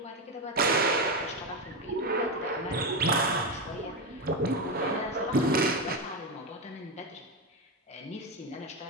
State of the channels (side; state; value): both; normal; correlation 0.11